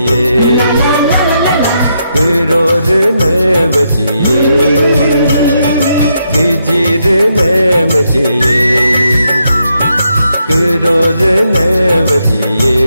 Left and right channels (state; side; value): inverted; both; correlation -0.80